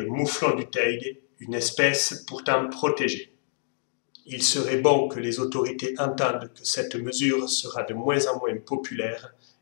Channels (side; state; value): right; silent; digital silence